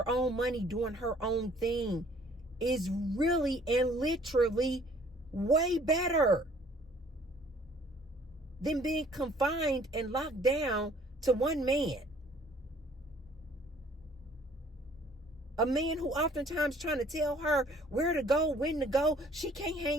own money, doing her own thing, is really and literally way better than being confined and locked down to one man. A man who oftentimes trying to tell her where to go, when to go. She can't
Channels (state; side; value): normal; both; correlation 0.57